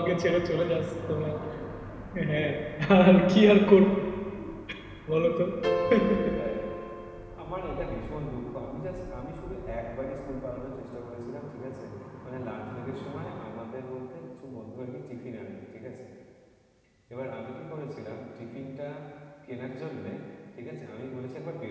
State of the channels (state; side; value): identical; both; correlation 1.00